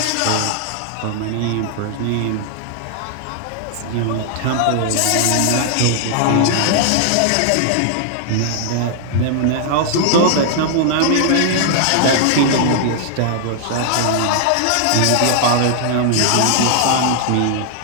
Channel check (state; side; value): different; both; correlation 0.00